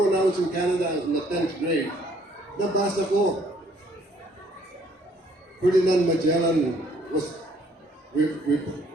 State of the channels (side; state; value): both; normal; correlation 0.63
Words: I was in Canada, I was in the 10th grade, nabasa ko. Ferdinand Magellan